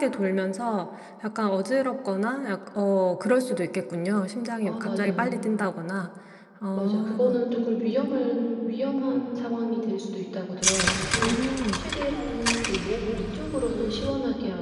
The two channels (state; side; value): identical; both; correlation 1.00